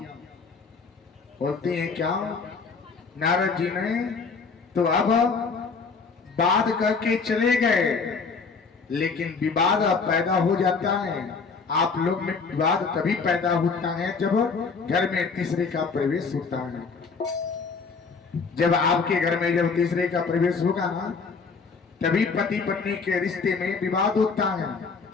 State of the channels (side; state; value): right; quieter; 4.9 dB